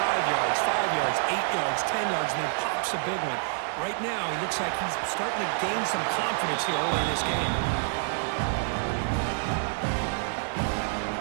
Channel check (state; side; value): silent; left; digital silence